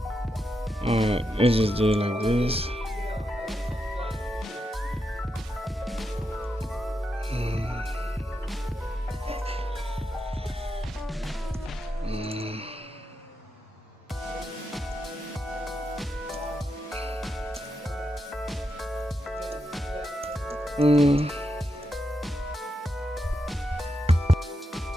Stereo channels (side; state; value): both; normal; correlation 0.85